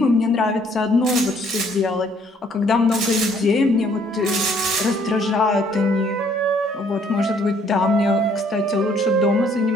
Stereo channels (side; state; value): both; normal; correlation 0.63